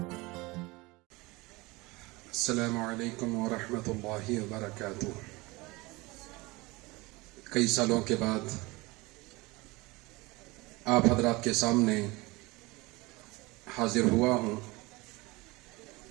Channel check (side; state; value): left; quieter; 23.2 dB